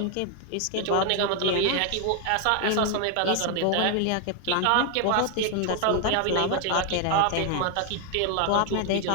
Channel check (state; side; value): different; both; correlation 0.01